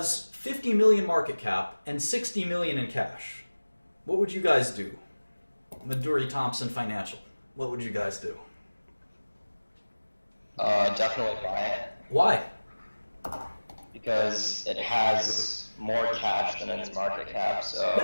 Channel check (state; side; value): inverted; both; correlation -1.00